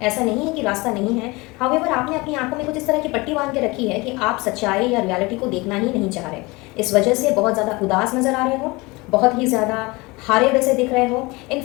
ऐसा नहीं है कि रास्ता नहीं है। हाउएवर आपने अपनी आंखों में कुछ इस तरह की पट्टी बांध के रखी है कि आप सच्चाई या रियलिटी को देखना ही नहीं चाह रहे। इस वजह से बहुत ज़्यादा उदास नज़र आ रहे हो, बहुत ही ज़्यादा हारे वैसे दिख रहे हो।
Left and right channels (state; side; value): quieter; right; 24.0 dB